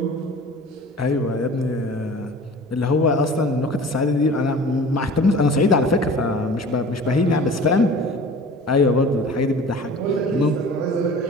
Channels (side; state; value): both; normal; correlation 0.42